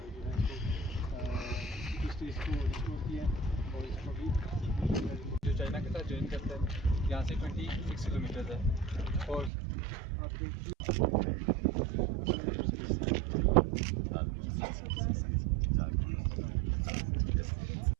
जो है इसको स्टेज को रिस्टोर किया और इसको भी जो चाइना के साथ ज्वाइन करता है यहाँ से 26 किलोमीटर है और आपके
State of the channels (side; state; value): left; drops out; at 9.5 s